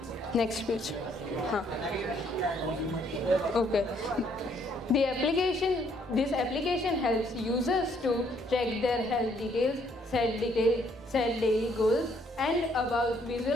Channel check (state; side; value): normal; both; correlation 0.67